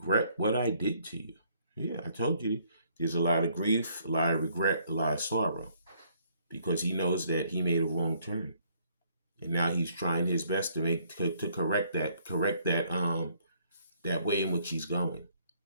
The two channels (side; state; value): both; inverted; correlation -0.66